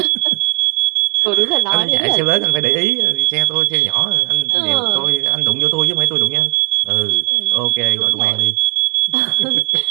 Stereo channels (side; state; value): left; quieter; 34.8 dB